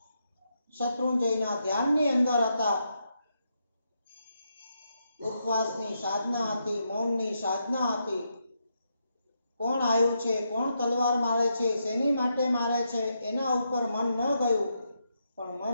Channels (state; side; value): inverted; both; correlation -0.82